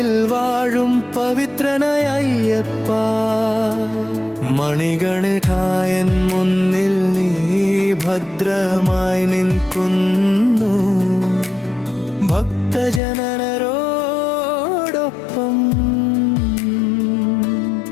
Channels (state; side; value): drops out; right; at 13.0 s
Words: വാഴും പവിത്രനായ അയ്യപ്പ. മണികണികായൻ മുന്നിൽ നീ ഭദ്രമായി നിൽക്കുന്നു, ഭക്തജനരോടൊപ്പം.